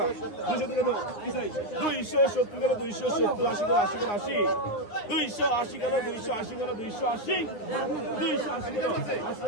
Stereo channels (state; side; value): late; right; 9.7 ms